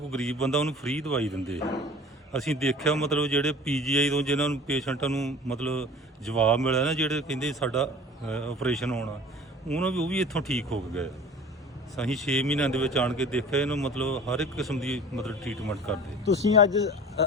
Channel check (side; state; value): both; normal; correlation 0.43